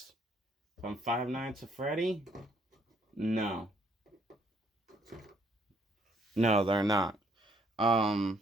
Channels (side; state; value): both; normal; correlation 0.66